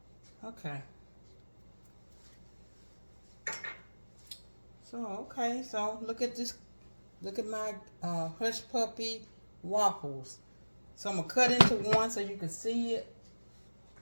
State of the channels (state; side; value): inverted; both; correlation -1.00